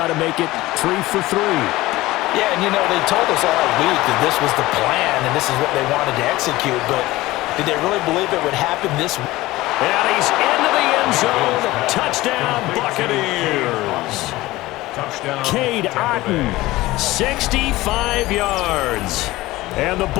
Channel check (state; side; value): quieter; right; 18.4 dB